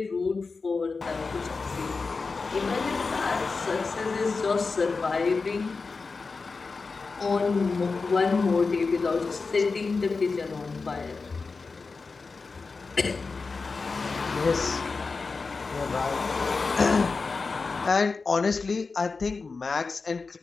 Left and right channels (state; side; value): quieter; right; 4.3 dB